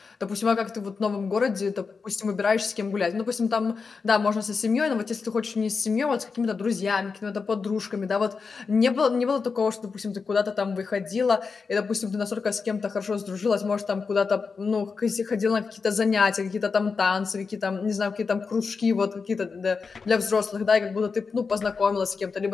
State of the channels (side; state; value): right; quieter; 5.0 dB